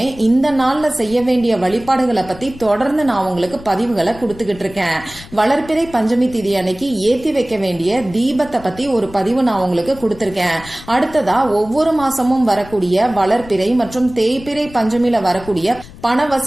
இந்த நாள்ல செய்ய வேண்டிய வழிபாடுகளை பத்தி தொடர்ந்து நான் உங்களுக்கு பதிவுகளை கொடுத்துக்கிட்டு இருக்கேன். வளர்பிறை பஞ்சமி திதி அன்னைக்கு ஏத்தி வைக்க வேண்டிய தீபத்தை பத்தி ஒரு பதிவு நான் உங்களுக்கு கொடுத்திருக்கேன். அடுத்ததா ஒவ்வொரு மாசமும் வரக்கூடிய வளர்பிறை மற்றும் தேய்பிறை பஞ்சமில வரக்கூடிய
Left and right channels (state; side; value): noise; left; rumble, 18 dB below the sound